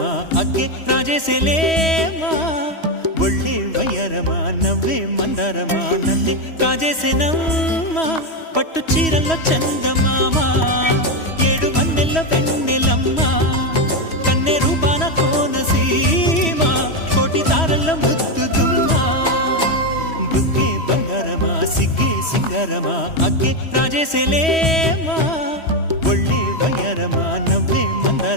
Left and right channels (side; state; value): right; late; 3.1 ms